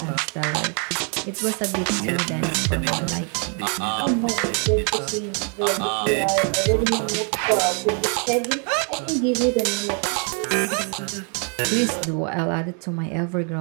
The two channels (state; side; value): quieter; left; 39.5 dB